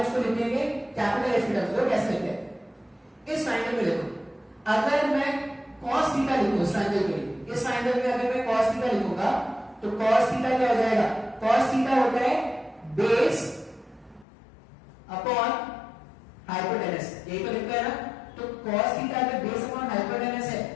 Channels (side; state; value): right; drops out; at 14.2 s